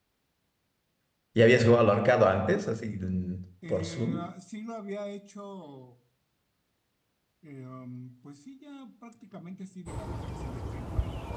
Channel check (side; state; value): both; identical; correlation 1.00